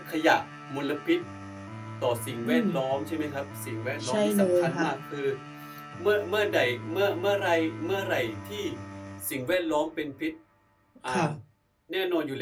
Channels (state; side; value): identical; both; correlation 1.00